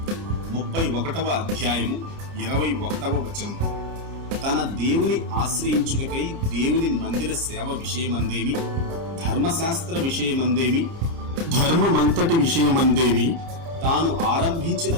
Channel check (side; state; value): left; late; 29 ms